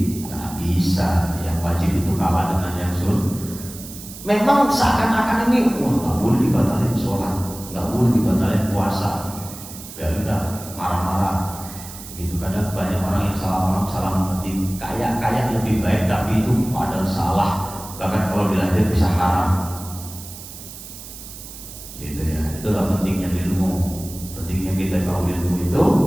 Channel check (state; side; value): noise; right; hiss, 14 dB below the sound